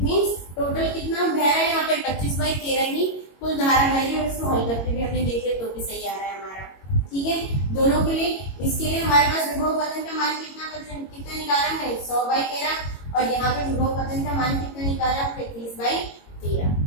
मींस टोटल कितना बह रहा है यहाँ पे 25/13 ही कुल धारा बह रही है। और इसको हल करके भी हमने देख लिया तो भी सही आ रहा है हमारा। ठीक है, दोनों के लिए इसके लिए हमारे पास विभव पतन का मान कितना निकाला है 100/13 और यहाँ पे विभव पतन का मान कितना निकाला है 30/13।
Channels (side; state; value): right; late; 22 ms